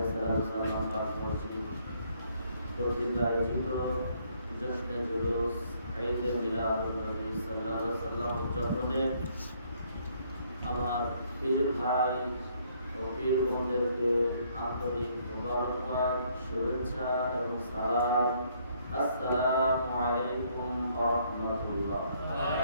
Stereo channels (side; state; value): both; inverted; correlation -0.68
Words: সালাম পাক মসজিদ কর্তৃক আয়োজিত জশ্নে জুলুস ঈদে মিলাদুন নবী সাল্লাল্লাহু আলাইহি ওয়াসাল্লাম উদযাপনে আমার পীর ভাই ও পীর বোনদেরকে আন্তরিক মোবারকবাদ, শুভেচ্ছা এবং সালাম। আসসালামু আলাইকুম ওয়া রাহমাতুল্লাহ। ওয়া